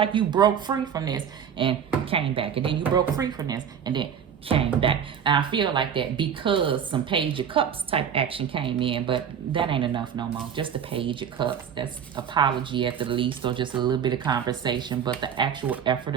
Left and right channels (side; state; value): left; quieter; 8.0 dB